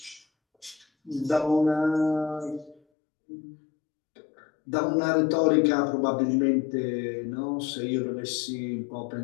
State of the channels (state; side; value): drops out; right; at 2.8 s